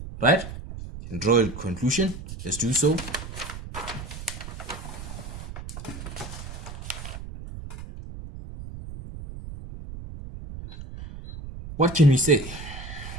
right? You can draw a conclusion. Let's do so. What can we say?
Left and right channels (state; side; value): noise; right; rumble, 10 dB below the sound